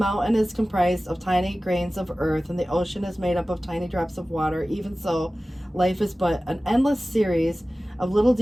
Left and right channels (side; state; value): both; normal; correlation 0.97